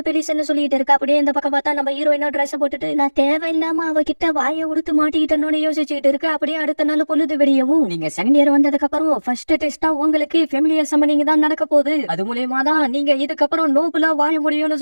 பெலிசன்னு சொல்லிட்டு இருக்கா. அப்படியே இந்த பக்கம் பார்த்தா நம்ம ஹீரோயினோ ட்ரெஸ் போட்டுட்டு நான் தேவையில்லாம அவகிட்ட வாயை உடுத்து மாட்டிக்கிட்டோன்னு யோசிச்சுட்டு இருக்க. அப்படியே அடுத்த நாள் பொழுது வெடியவும் நீங்க செகண்ட் இயர் வந்ததுக்கு அப்புறம் ஃபர்ஸ்ட் டெஸ்டா உங்களுக்கு ஃபெமிலியர் சம்மனிங் தான் நடக்க போகுது. அது மூலமா தான் நீங்க இதுக்கப்புறம் நோபுலா வாழ முடியும்னு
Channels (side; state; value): both; inverted; correlation -1.00